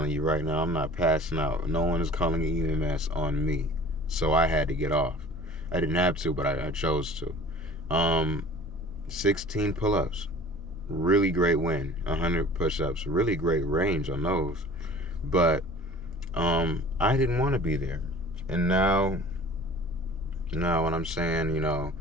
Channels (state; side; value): normal; both; correlation 0.45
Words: you right now, I'm not passing out. No one is calling an EMS on me. So I had to get off. I didn't have to, but I chose to. 16 pull-ups. Really great win. 100 push-ups. Really great range on those. But I didn't want to be there. And now when I'm saying,